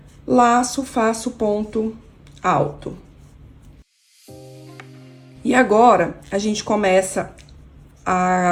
Laço, faço ponto alto. E agora, a gente começa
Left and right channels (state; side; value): identical; both; correlation 1.00